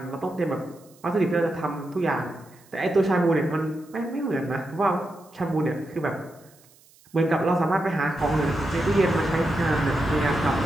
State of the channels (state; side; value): noise; right; hiss, 28 dB below the sound